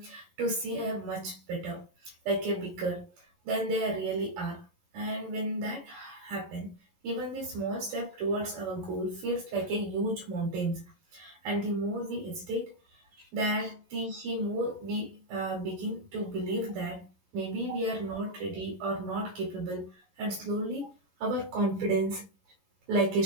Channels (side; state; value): left; late; 11 ms